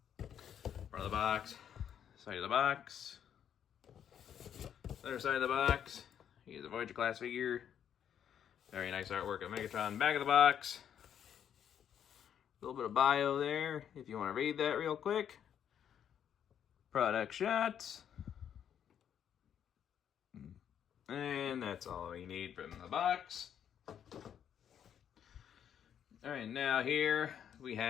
Front of the box, side of the box. Other side of the box, here's a Voyager class figure. Very nice artwork of Megatron. Back of the box, a little bit of bio there, if you want to read that real quick. Product shots. And that's all you need from the box. Alright, now here we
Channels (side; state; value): right; quieter; 9.1 dB